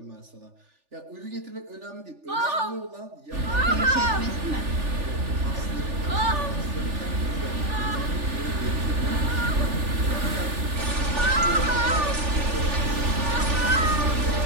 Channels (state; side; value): late; left; 3.4 ms